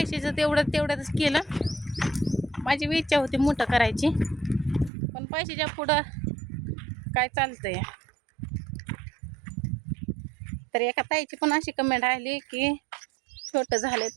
तेवढंच केलं. माझी इच्छा होती मोठं करायची पण पैशाच्या पुढं काय चालतंय. तर एका ताईची पण अशी कमेंट आली की छोटं झालंय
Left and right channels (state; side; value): drops out; left; at 4.9 s